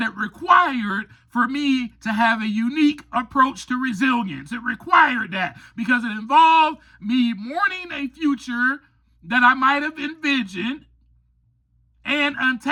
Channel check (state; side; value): identical; both; correlation 1.00